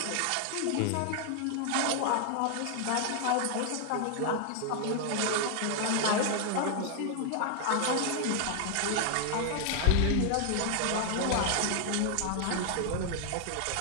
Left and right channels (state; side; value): different; both; correlation 0.00